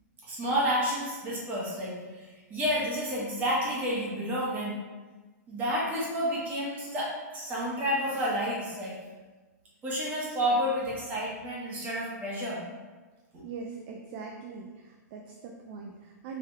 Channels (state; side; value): normal; both; correlation -0.04